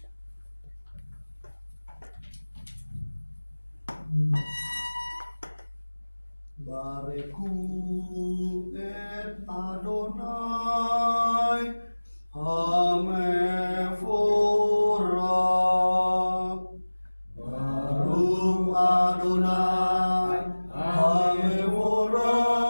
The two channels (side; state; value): both; inverted; correlation -1.00